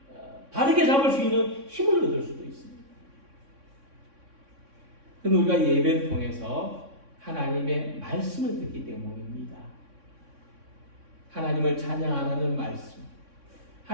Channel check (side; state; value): left; late; 3.6 ms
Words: 바르게 잡을 수 있는 힘을 얻을 수도 있습니다. 그건 우리가 예배를 통해서 하나님의 말씀을 듣기 때문입니다. 하나님을 찬양하라는 말씀,